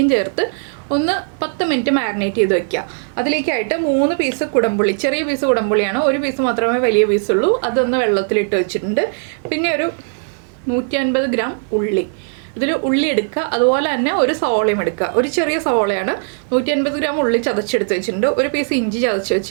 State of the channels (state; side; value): silent; left; 55 dB below the other